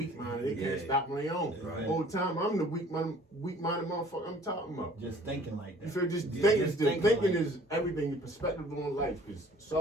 minded. They can't Yeah. stop on their own. Right. Whole time I'm the weak minded motherfucker I'm talking about. Just thinking like that. You feel just Yeah, thinking, just thinking thinking like is everything. Your perspective on life, because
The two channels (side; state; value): both; normal; correlation 0.53